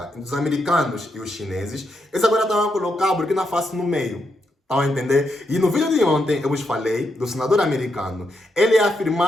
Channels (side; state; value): both; normal; correlation 0.82